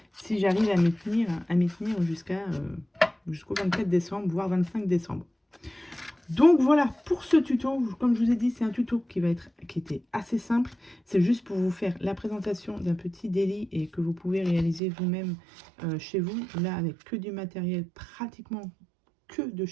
Si j'arrive à m'y tenir jusqu'au 24 décembre, voire 25 décembre. Donc voilà, pour ce tuto, comme je vous ai dit, c'est un tuto qui était assez simple. C'est juste pour vous faire la présentation d'un petit délit et que vous pouvez réaliser vous-même chez vous. Là, avec que du matériel, pratiquement que de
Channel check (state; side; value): drops out; left; at 14.8 s